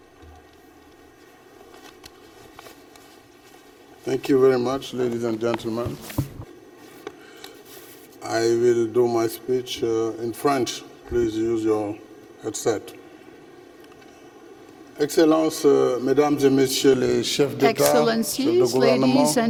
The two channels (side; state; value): both; identical; correlation 1.00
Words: Thank you very much, ladies and gentlemen. I will do my speech in French. Please use your headset. Excellences, Mesdames et Messieurs les chefs d'État, chefs de Excellencies, gouvernement, ladies